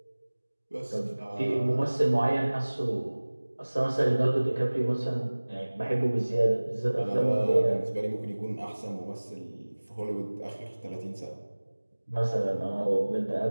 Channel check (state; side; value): inverted; both; correlation -1.00